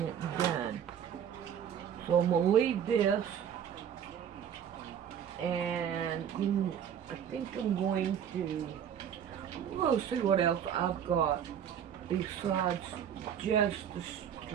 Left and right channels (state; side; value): quieter; left; 8.8 dB